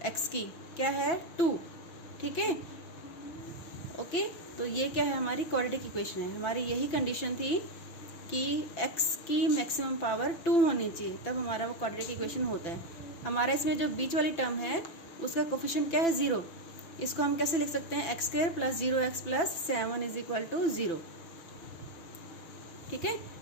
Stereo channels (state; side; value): late; right; 5.9 ms